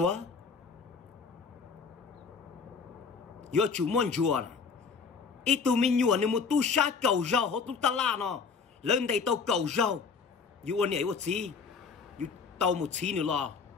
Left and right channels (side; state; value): right; quieter; 5.3 dB